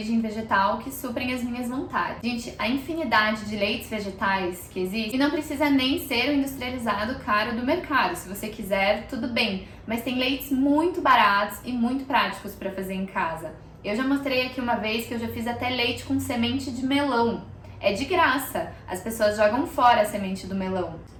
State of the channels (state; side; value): identical; both; correlation 1.00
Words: vegetal que suprem as minhas vontades. Gente, a infinidade de leites vegetais que existe, e não precisa nem ser o industrializado caro do mercado. Se você quiser, tudo bem. Mas tem leites muito baratos e muito práticos para fazer em casa. Eu já mostrei aqui uma vez que eu já fiz até leite com semente de melão. É de graça. As pessoas jogam fora a semente do melão.